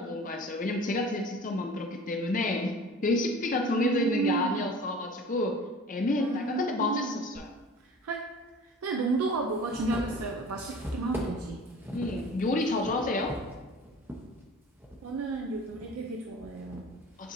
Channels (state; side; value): normal; both; correlation 0.42